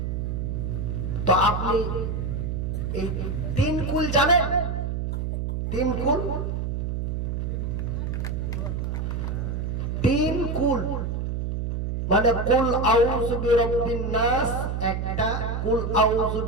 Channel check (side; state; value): right; noise; hum, 2 dB below the sound